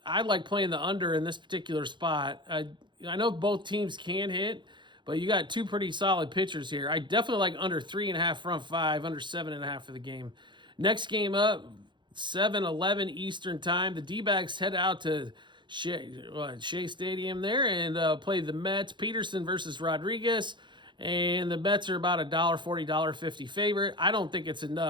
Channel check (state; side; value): late; left; 0.23 ms